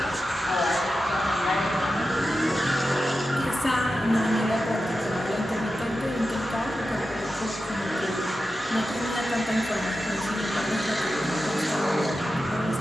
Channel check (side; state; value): both; normal; correlation 0.91